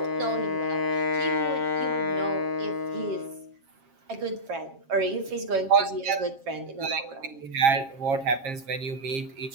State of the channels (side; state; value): left; late; 7.4 ms